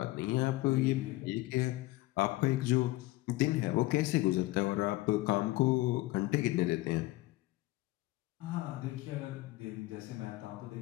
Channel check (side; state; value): right; quieter; 19.2 dB